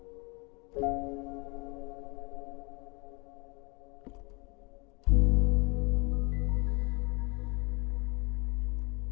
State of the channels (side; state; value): right; quieter; 29.2 dB